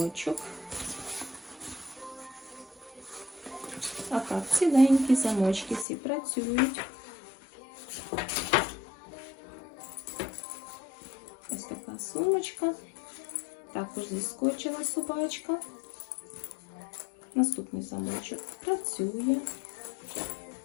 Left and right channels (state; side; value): drops out; right; at 5.9 s